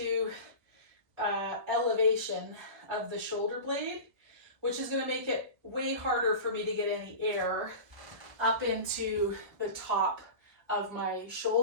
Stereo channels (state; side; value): late; left; 1.3 ms